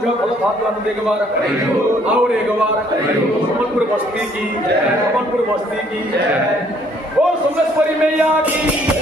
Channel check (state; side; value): normal; both; correlation 0.63